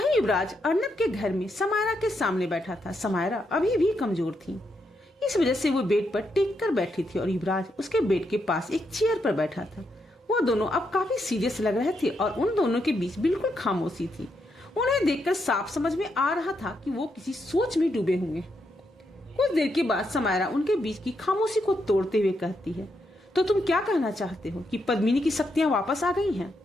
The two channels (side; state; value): both; normal; correlation 0.80